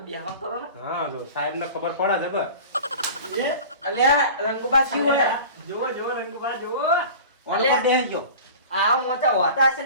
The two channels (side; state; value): both; inverted; correlation -0.38